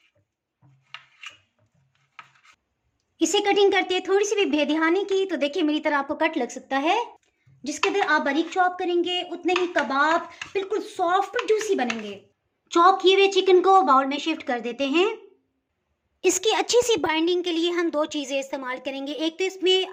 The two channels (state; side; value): identical; both; correlation 1.00